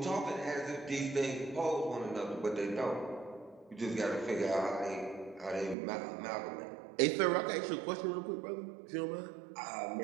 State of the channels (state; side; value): drops out; left; at 5.8 s